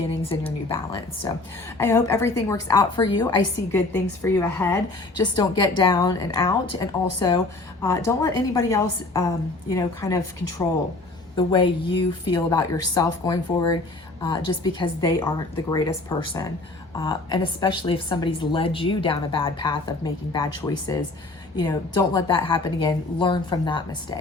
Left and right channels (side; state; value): right; quieter; 3.1 dB